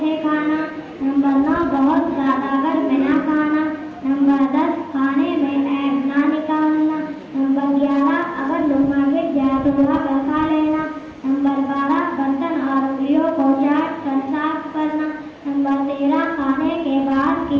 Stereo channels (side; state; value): both; identical; correlation 1.00